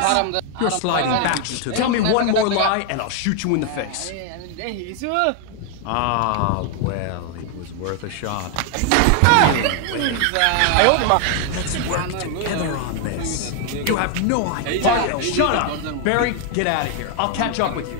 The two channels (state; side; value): different; both; correlation 0.00